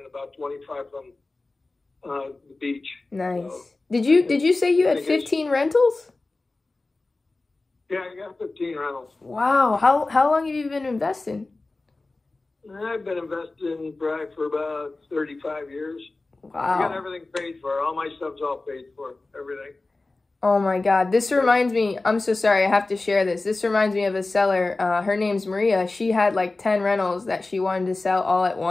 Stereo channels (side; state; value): right; quieter; 3.3 dB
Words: about 25 from the beach. Nice. So, did you say you had 15 rentals? Yeah, I got 15 rentals. Wow. How long have you been investing? I've been investing probably for about 35 years. Wow. I got everything paid for. All my stuff's all paid for. Everything. Oh my God. This reminds me, I'm so sorry, I have to share this. This reminds me of a seller. Her name's Maria. She had like 10 rentals that she wanted to sell all at